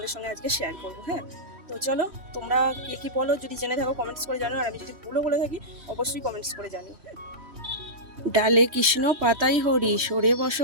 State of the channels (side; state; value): left; late; 3.2 ms